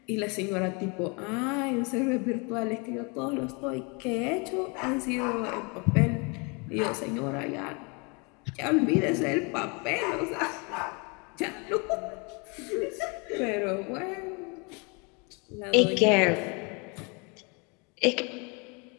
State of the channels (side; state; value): right; quieter; 31.4 dB